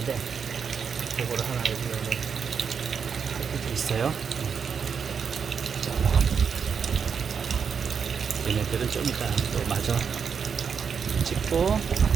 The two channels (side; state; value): left; quieter; 6.5 dB